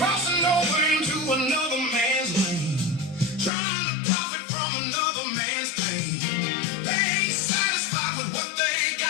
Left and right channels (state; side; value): drops out; right; at 3.5 s